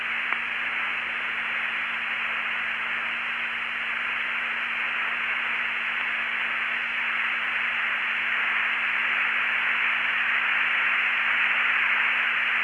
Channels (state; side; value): identical; both; correlation 1.00